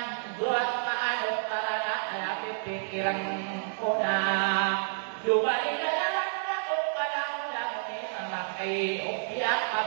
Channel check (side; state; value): left; silent; 58 dB below the other